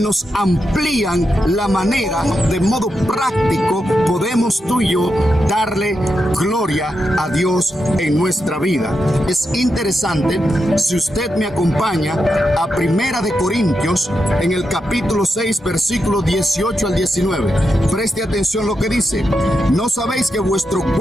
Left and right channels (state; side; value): normal; both; correlation 0.86